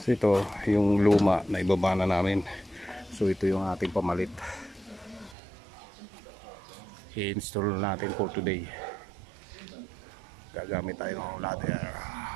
So ito yung luma na ibaba na namin. So ito yung ating pamalit. I-install natin for today. Gagamit tayo ng ladder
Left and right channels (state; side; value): drops out; left; at 5.4 s